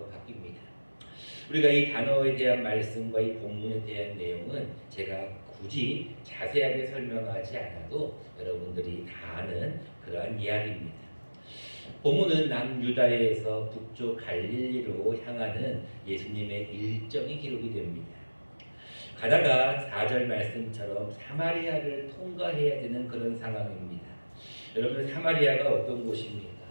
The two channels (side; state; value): both; inverted; correlation -1.00